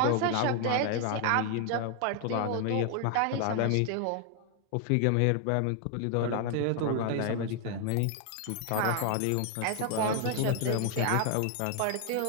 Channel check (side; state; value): both; different; correlation 0.00